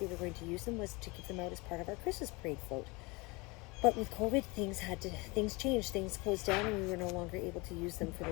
were going to use them was to give them out as part of our Christmas parade float. But with COVID, things changed, things closed down, and we were no longer able to use them for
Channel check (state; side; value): quieter; right; 25.8 dB